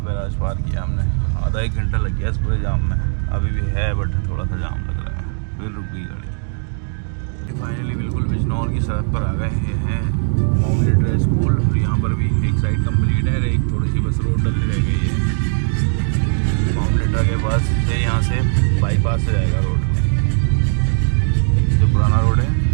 बैराज पार किया हमने, आधा 1 घंटा लग गया इस पूरे जाम में। अभी भी है बट थोड़ा सा जाम लग रहा है, फिर रुक गई गाड़ी। फाइनली बिल्कुल बिजनौर की सड़क पर आ गए। ये है मिलिट्री स्कूल, और यहाँ पर भी एक साइड कंप्लीट है, एक थोड़ी सी बस रोड डलनी रह गई है। मामलेटा के पास से यहाँ से बाईपास से जाएगा रोड, जो पुराना रोड है।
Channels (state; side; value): silent; left; digital silence